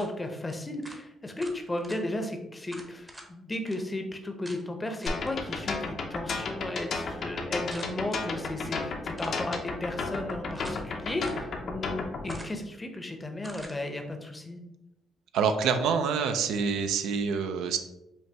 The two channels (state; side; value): normal; both; correlation 0.68